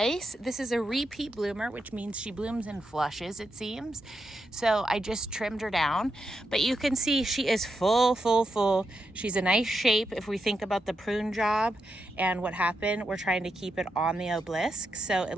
This is a repeat bloomer, which means she blooms in flushes, it seems. So I just trimmed her down. But you can see she is full. She's a nice shape if we think about the prune job and what happened. We're trying to keep it on the obelisk. So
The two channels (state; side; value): normal; both; correlation 0.85